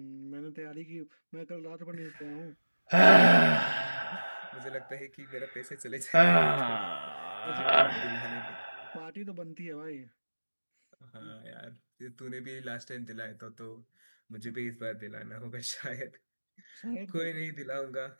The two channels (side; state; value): both; inverted; correlation -1.00